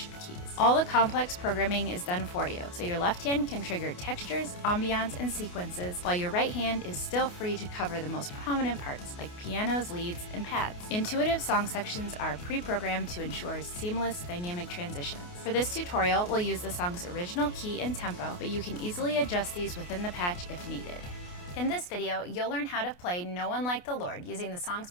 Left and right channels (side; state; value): right; late; 28 ms